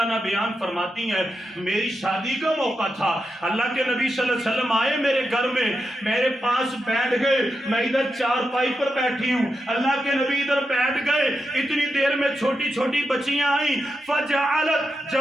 عنہ بیان فرماتی ہیں میری شادی کا موقع تھا، اللہ کے نبی صلی اللہ علیہ وسلم آئے میرے گھر میں، میرے پاس بیٹھ گئے، میں ادھر چارپائی پر بیٹھی ہوں، اللہ کے نبی ادھر بیٹھ گئے. اتنی دیر میں چھوٹی چھوٹی بچیاں آئیں. فجعلت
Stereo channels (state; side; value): normal; both; correlation 0.87